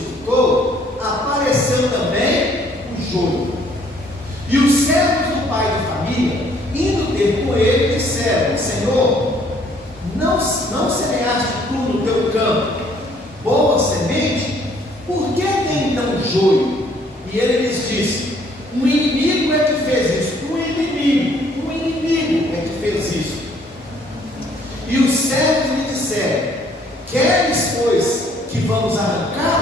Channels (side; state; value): both; normal; correlation 0.62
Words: apareceu também o joio. E os servos do pai de família, indo ter com ele, disseram: Senhor, não semeaste tu no teu campo boa semente? Por que tem então joio? E ele lhes disse: um inimigo é que fez isso. Um inimigo é que fez isso. E os servos lhe disseram: queres, pois, que vamos